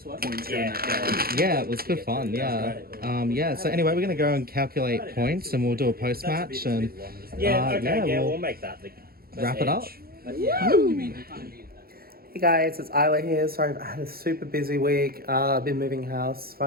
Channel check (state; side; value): late; left; 0.44 ms